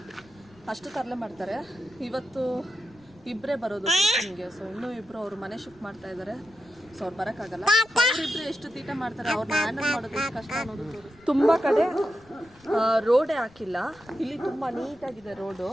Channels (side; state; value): left; noise; rumble, 27 dB below the sound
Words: ಅಷ್ಟು ತರಲೆ ಮಾಡ್ತಾರೆ. ಇವತ್ತು ಇಬ್ಬರೇ ಬರೋದು ಟ್ಯೂಷನ್ಗೆ. ಸೊ ಇನ್ನೂ ಇಬ್ಬರು ಅವ್ರ ಮನೆ ಶಿಫ್ಟ್ ಮಾಡ್ತಾ ಇದ್ದಾರೆ. ಸೊ ಅವ್ರು ಬರೋಕ್ಕಾಗಲ್ಲ. ಅವರಿಬ್ಬರು ಎಷ್ಟು ತೀಟ ಮಾಡ್ತಾರೆ, ಅವ್ರನ್ನ ಹ್ಯಾಂಡಲ್ ಮಾಡೋದು ಎಷ್ಟು ಕಷ್ಟ ಅನ್ನೋದು ತೋರಿಸ್ತೀನಿ. ತುಂಬ ಕಡೆ ರೋಡೇ ಹಾಕಿಲ್ಲ. ಇಲ್ಲಿ ತುಂಬ ನೀಟಾಗಿದೆ ರೋಡು.